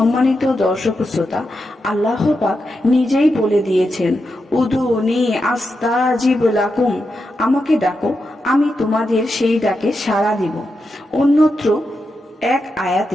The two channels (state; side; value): normal; both; correlation 0.87